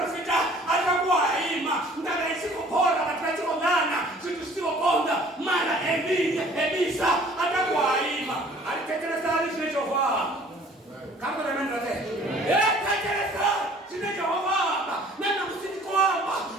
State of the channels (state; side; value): normal; both; correlation 0.53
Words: sita atakuwa haima. Ndakaishi kupora watu wa ngana. Sio bonda. Mara Elisa atakuwa haima. Alitekeleza alisho Jehova. Kama na mimi ndote. Tekeleza sina Jehova. Nana msiki kwamba